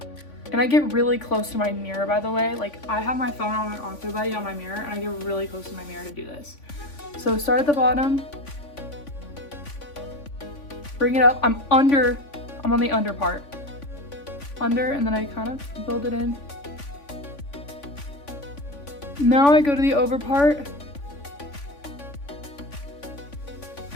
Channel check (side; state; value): right; late; 3.5 ms